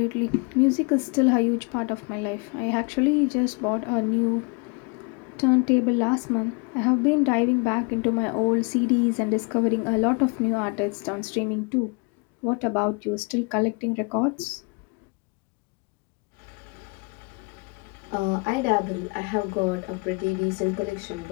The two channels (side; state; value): right; quieter; 32.4 dB